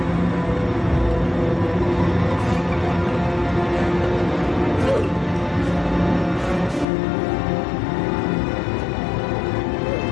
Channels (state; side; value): drops out; right; at 6.9 s